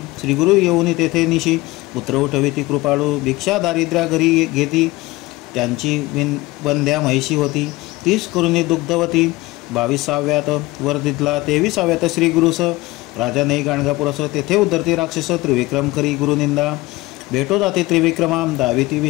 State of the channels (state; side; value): quieter; right; 20.1 dB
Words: श्री गुरु येऊन तेथे निशी पुत्र उठविती कृपाळू भिक्षा दारिद्र्या घरी घेती त्यांची वंद्या म्हैशी होती 30 करुणी दुग्धवती। 22व्यात वर दिदला 23व्यात श्री गुरुस राजा नाही गाणगापुरस तेथे उद्धरती राक्षस त्रिविक्रम करी गुरुनिंदा भेटो जाते त्रिविक्रमा दाविती